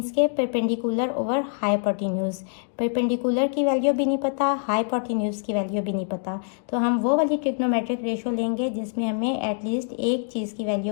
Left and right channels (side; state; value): right; silent; digital silence